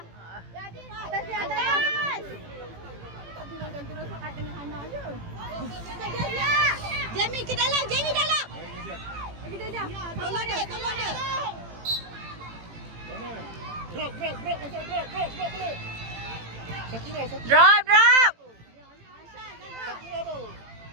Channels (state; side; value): late; left; 18 ms